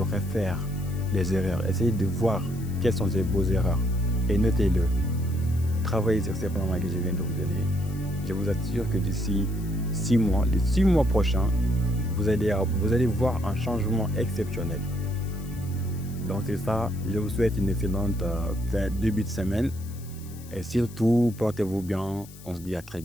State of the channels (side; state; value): left; noise; hiss, 20 dB below the sound